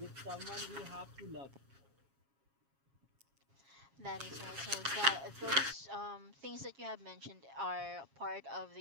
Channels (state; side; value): late; left; 7.3 ms